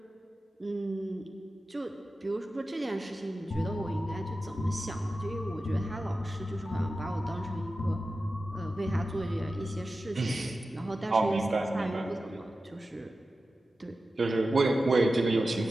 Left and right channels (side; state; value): both; normal; correlation 0.93